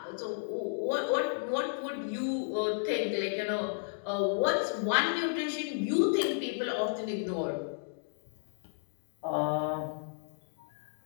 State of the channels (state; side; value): silent; right; digital silence